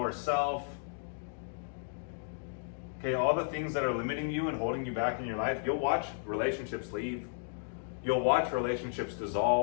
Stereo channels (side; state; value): right; silent; digital silence